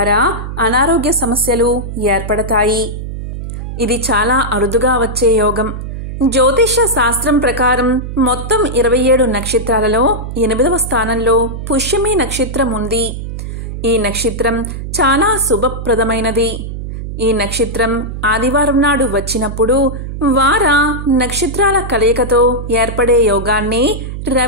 అనారోగ్య సమస్యలు ఏర్పడతాయి. ఇది చాలా అరుదుగా వచ్చే యోగం. జ్యోతిష్య శాస్త్రం ప్రకారం మొత్తం 27 నక్షత్రాలలో 8వ స్థానంలో పుష్యమి నక్షత్రం ఉంది. ఈ నక్షత్రం చాలా శుభప్రదమైనది. ఈ నక్షత్రం ఆదివారం నాడు వచ్చినప్పుడు వార నక్షత్రాల కలయికతో ఏర్పడే యోగాన్ని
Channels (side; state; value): right; noise; hum, 7 dB below the sound